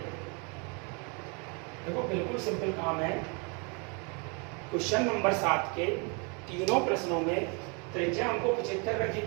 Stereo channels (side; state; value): left; quieter; 33.5 dB